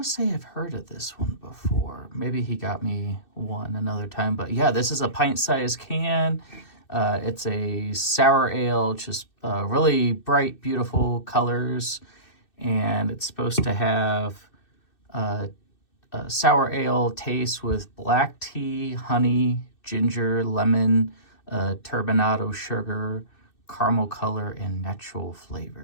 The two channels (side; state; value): right; late; 2.6 ms